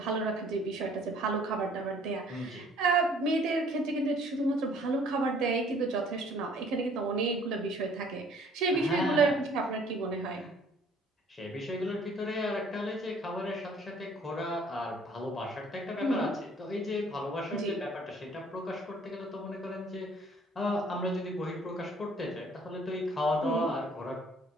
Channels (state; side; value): normal; both; correlation 0.57